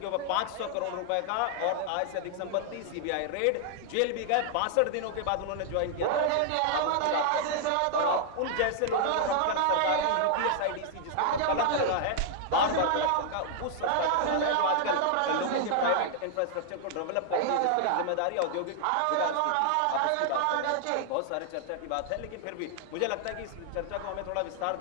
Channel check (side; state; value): both; different; correlation 0.00